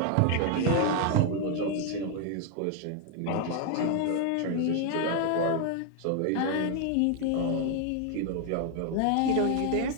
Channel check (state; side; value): different; both; correlation 0.00